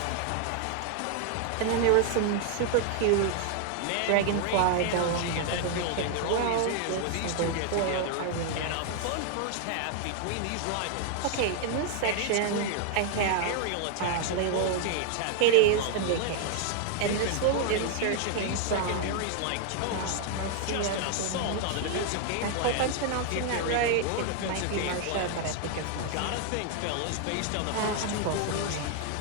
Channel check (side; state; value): both; different; correlation 0.00